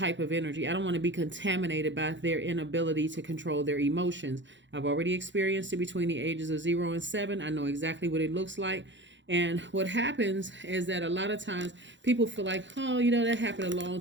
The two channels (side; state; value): left; late; 0.54 ms